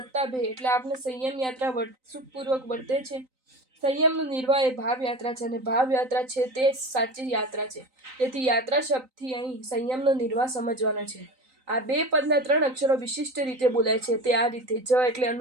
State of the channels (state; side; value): late; left; 3.9 ms